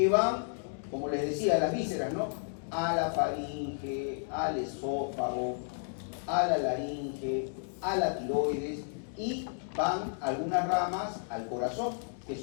van, como les decía, a las vísceras, ¿no? A la faringe, al esófago, a la laringe, a la tiroides y van algunas ramas al corazón, que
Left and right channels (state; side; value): silent; right; digital silence